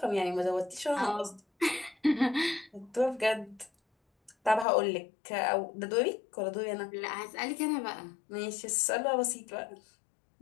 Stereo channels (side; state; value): right; drops out; at 4.7 s